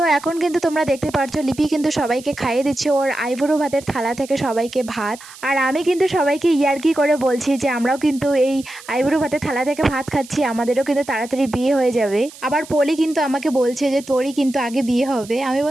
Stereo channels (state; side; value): noise; right; hiss, 19 dB below the sound